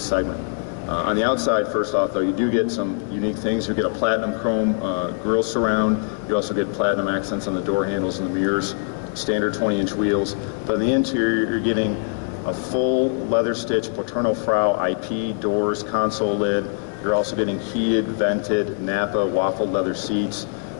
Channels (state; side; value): silent; right; 58 dB below the other